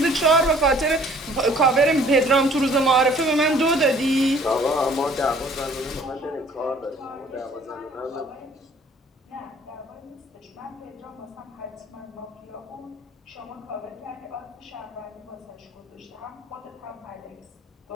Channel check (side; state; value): both; normal; correlation 0.55